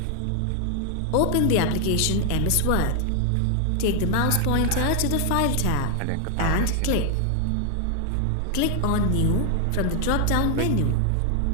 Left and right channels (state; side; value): different; both; correlation 0.00